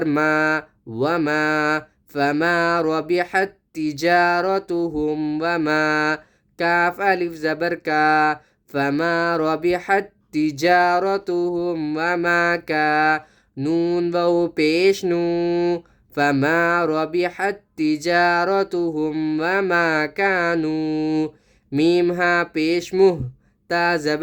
ما وما فما ربحت تجارتهم وما كاف ألف زبر كا فما ربحت تجارتهم وما كا نون واو پیش نو فما ربحت تجارتهم وما كانوا ميم ها پیش مه تا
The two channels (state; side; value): identical; both; correlation 1.00